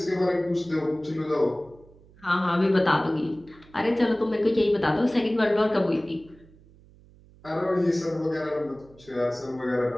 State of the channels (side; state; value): right; noise; hum, 26 dB below the sound